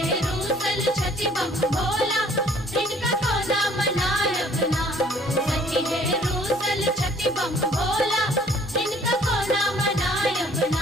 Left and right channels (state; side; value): normal; both; correlation 0.57